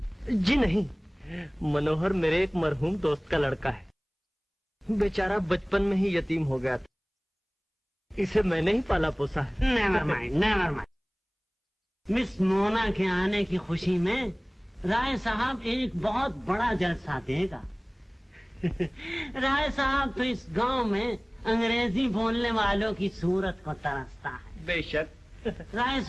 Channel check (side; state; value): both; identical; correlation 1.00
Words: जी नहीं, मनोहर मेरे एक मरहूम दोस्त का लड़का है। बेचारा बचपन में ही यतीम हो गया था। इसे मैंने ही पाला पोसा है। Never mind, never mind. Miss Mona के आने की खुशी में राय साहब एक बहुत बड़ा जलसा देगा। राय साहब तो इस गांव में अंग्रेजी बोलने वालों की सूरत को तरसता है। बेशक। राय